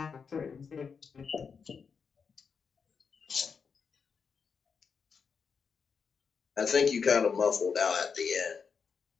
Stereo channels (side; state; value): right; quieter; 5.9 dB